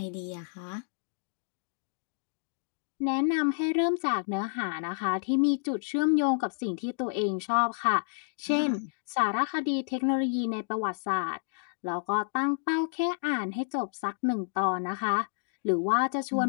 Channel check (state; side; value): silent; right; digital silence